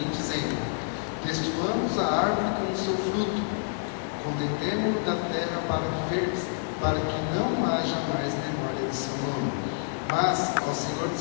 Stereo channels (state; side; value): silent; right; digital silence